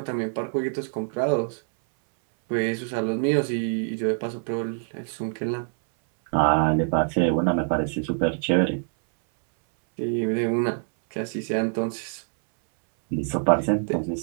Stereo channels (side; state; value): left; silent; 62 dB below the other